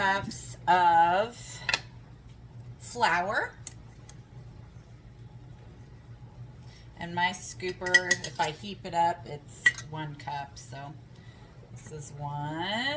of flour. And my scooper, if I heap it up, it's 1 cup. So this is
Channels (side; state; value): both; identical; correlation 1.00